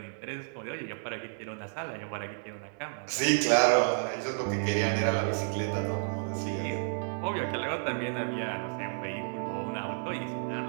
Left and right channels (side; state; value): left; silent; 57 dB below the other